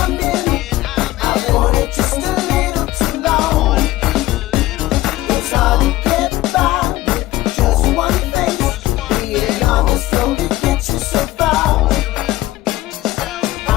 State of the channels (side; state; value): right; quieter; 16.9 dB